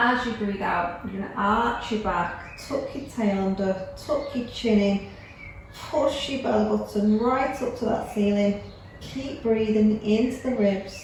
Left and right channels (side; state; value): both; identical; correlation 1.00